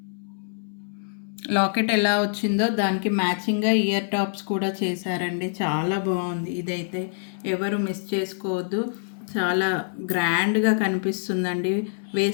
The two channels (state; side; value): silent; right; 62 dB below the other